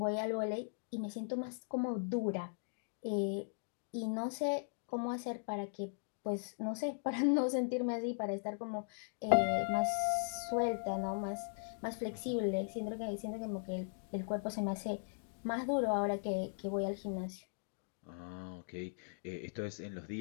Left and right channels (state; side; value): silent; right; digital silence